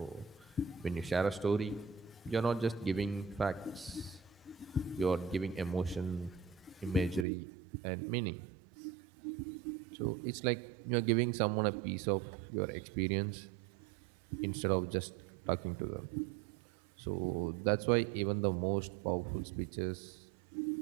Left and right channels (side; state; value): left; drops out; at 7.2 s